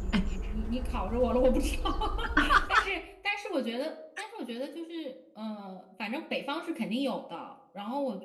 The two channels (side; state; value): both; identical; correlation 1.00